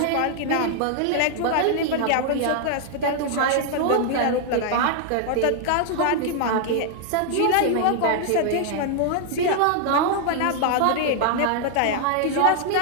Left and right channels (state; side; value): different; both; correlation 0.00